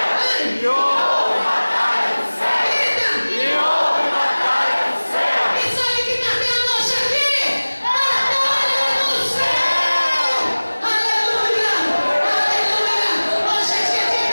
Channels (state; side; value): inverted; both; correlation -1.00